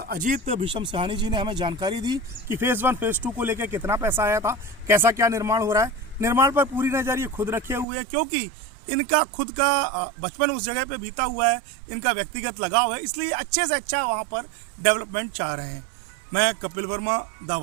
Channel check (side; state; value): left; drops out; at 7.9 s